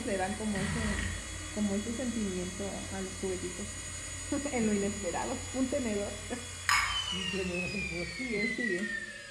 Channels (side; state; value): both; identical; correlation 1.00